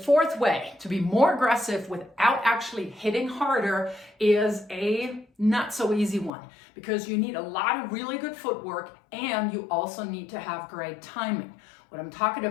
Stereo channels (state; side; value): drops out; right; at 6.3 s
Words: way to be more aggressive without actually hitting harder is a not so easy one, because you need a lot of really good footwork and you also need to have great timing. What I'm talking